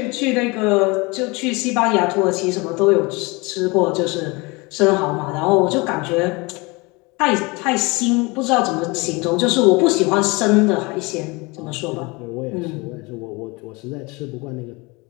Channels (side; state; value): right; quieter; 26.0 dB